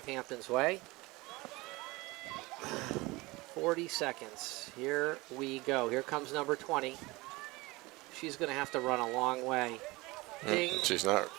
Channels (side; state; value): left; quieter; 22.5 dB